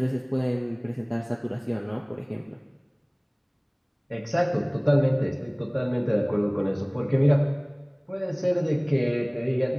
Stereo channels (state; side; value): identical; both; correlation 1.00